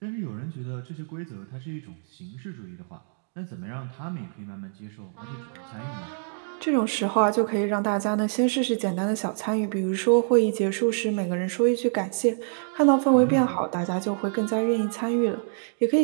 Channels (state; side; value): silent; left; 61 dB below the other